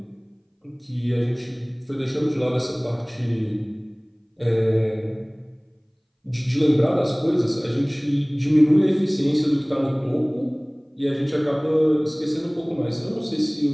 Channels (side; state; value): both; identical; correlation 1.00